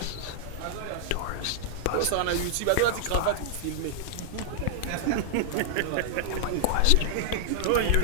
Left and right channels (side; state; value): both; different; correlation -0.01